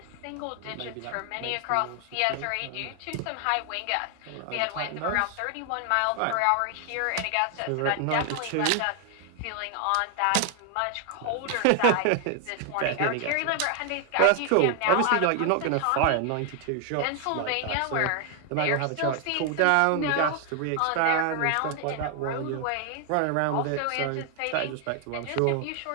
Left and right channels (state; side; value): different; both; correlation 0.00